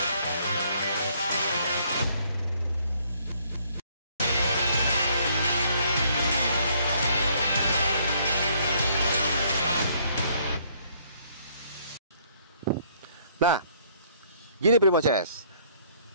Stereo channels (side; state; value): both; inverted; correlation -0.65